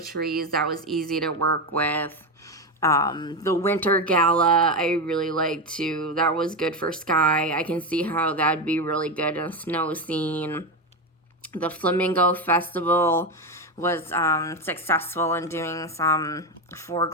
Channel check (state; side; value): normal; both; correlation 0.14